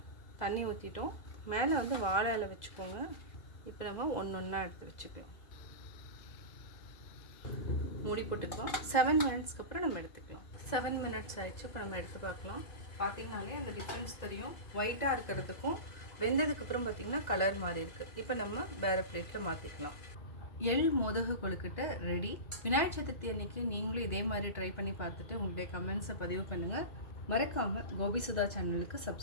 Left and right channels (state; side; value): late; right; 2.0 ms